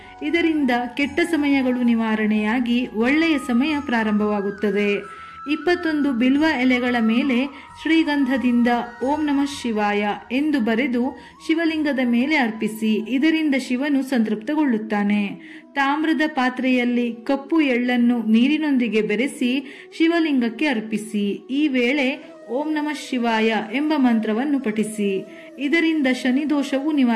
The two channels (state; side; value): identical; both; correlation 1.00